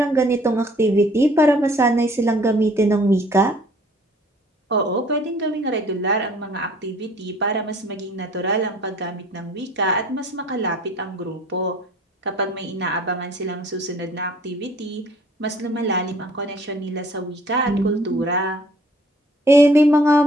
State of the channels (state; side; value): normal; both; correlation 0.55